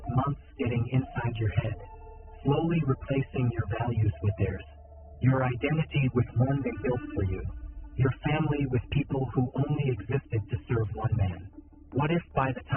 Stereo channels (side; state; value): both; identical; correlation 1.00